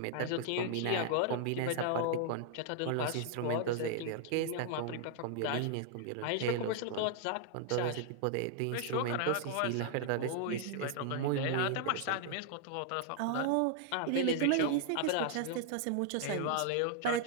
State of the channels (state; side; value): different; both; correlation 0.00